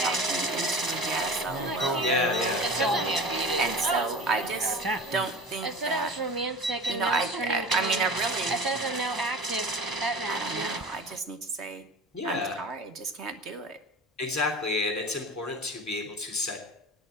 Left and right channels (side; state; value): both; normal; correlation 0.36